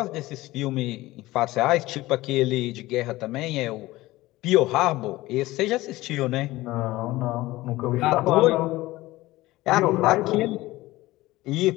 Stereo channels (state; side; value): quieter; right; 18.3 dB